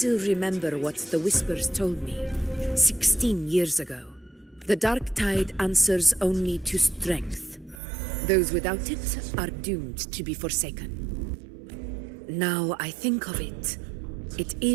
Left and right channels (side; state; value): left; drops out; at 7.8 s